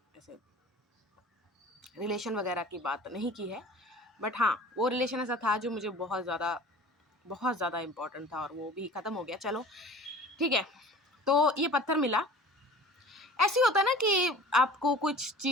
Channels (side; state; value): both; normal; correlation 0.43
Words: ऐसे रिलेशन वगैरह की बात नहीं की है, बट हाँ वो रिलेशन ऐसा था जो मुझे बहुत ज़्यादा इम्पोर्टेंट था और वो भी ख़त्म हो गया। चलो ठीक है, तो ये पत्थर मिला। ऐसे ही होता है ना कि आपको कुछ